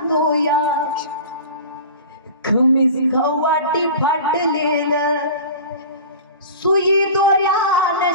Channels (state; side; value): inverted; both; correlation -0.36